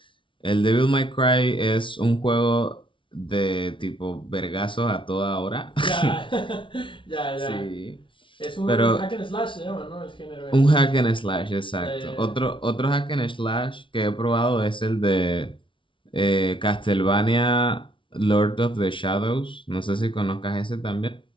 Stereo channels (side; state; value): right; late; 0.25 ms